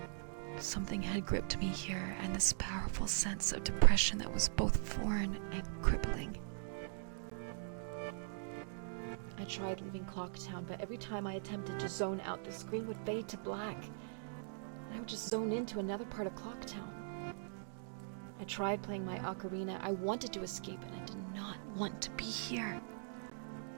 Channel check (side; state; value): left; silent; digital silence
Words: Something had gripped me here, and this powerful sense of depression that was both foreign and crippling. I tried leaving Clocktown, but every time I attempted to zone out, the screen would fade to black, and I would just zone into another part of Clocktown. I tried playing my ocarina. I wanted to escape, and I did not want to be here.